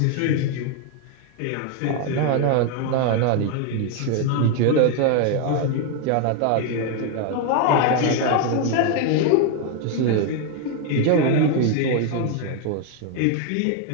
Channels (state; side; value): different; both; correlation 0.01